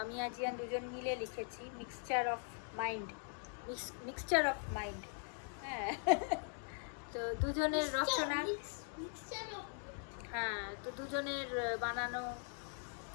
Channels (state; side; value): silent; right; 50 dB below the other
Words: আর জিয়ান দুজন মিলে লিখেছি mixture of mind, mixture of mind. হ্যাঁ তো দুজনের রচনা, হ্যাঁ তো দুজনের বানানো